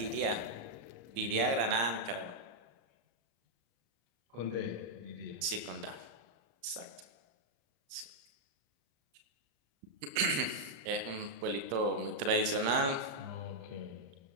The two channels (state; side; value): late; left; 35 ms